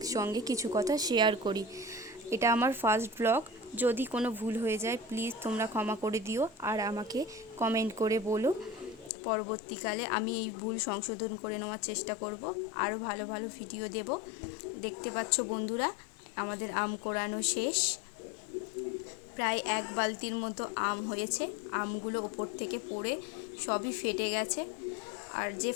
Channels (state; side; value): drops out; right; at 9.1 s